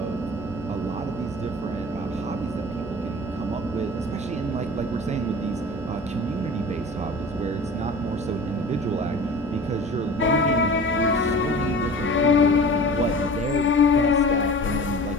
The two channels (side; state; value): both; normal; correlation 0.39